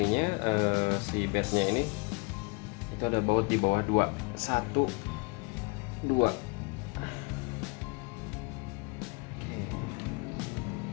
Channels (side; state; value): right; quieter; 31.1 dB